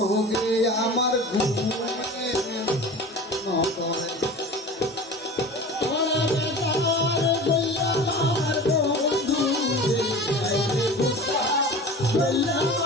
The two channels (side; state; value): both; normal; correlation 0.36